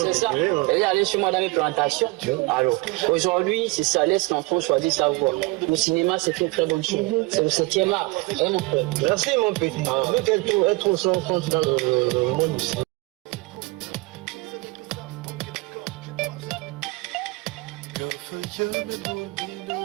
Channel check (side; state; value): left; quieter; 24.8 dB